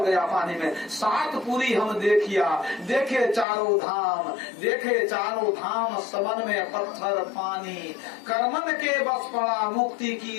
गया पानी में। सात पूरी हम देखिया, देखे चारों धाम, देखे चारों धाम, सबन में पत्थर पानी, कर्मन के बस पड़ा मुक्ति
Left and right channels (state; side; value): drops out; right; at 3.5 s